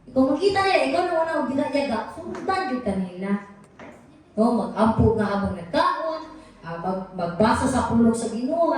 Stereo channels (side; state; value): both; identical; correlation 1.00